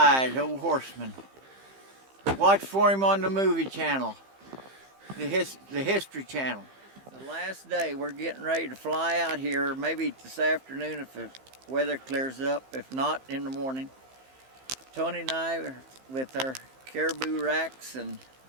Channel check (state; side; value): late; left; 15 ms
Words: old Horseman. Watch for him on the movie channel, the History Channel. The last day, we're getting ready to fly out here, maybe this afternoon if the weather clears up, if not in the morning. Tony and I are with our caribou racks, and